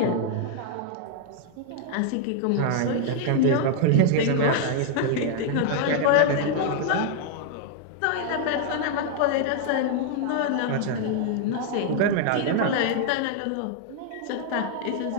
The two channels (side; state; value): both; different; correlation 0.00